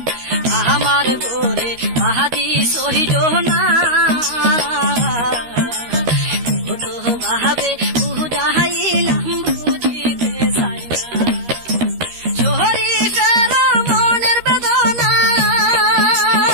আমার গোরে কাঁদি সহিজ না ভাবে উদাইলাম বুদিতে যাইয়া শরীফের মনের বেদনা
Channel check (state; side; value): late; left; 13 ms